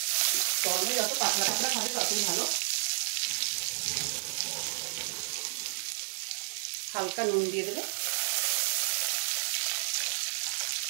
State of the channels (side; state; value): left; silent; digital silence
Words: গরমে যত পাতলা পাতলা খাবে ততই ভালো। হালকা নুন দিয়ে দেবে,